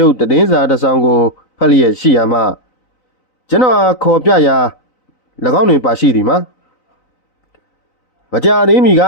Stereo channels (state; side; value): late; right; 3.9 ms